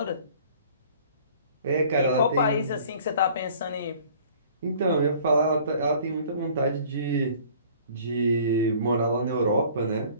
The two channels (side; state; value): both; inverted; correlation -0.51